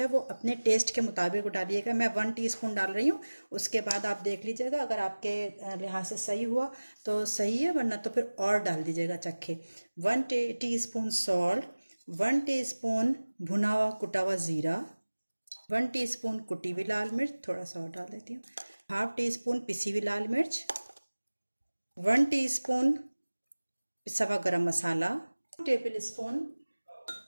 वो अपने टेस्ट के मुताबिक डालिएगा। मैं 1 टीस्पून डाल रही हूँ, उसके बाद आप देख लीजिएगा, अगर आपके लिहाज से सही हुआ तो सही है, वरना तो फिर और डाल दीजिएगा चखे। 1 टीस्पून सॉल्ट, 1 टीस्पून भुना हुआ कुटा हुआ ज़ीरा, 1 टीस्पून कुटी हुई लाल मिर्च, थोड़ा सा और डाल देती हूँ, ½ टीस्पून पिसी हुई लाल मिर्च, 1 टीस्पून पिसा हुआ गरम मसाला, 2 टेबल स्पून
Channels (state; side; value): inverted; both; correlation -1.00